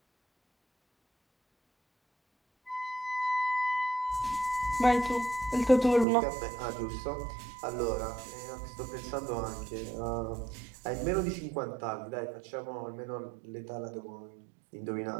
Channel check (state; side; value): drops out; left; at 6.1 s